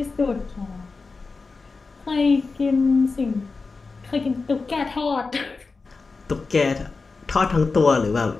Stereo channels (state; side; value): quieter; right; 4.2 dB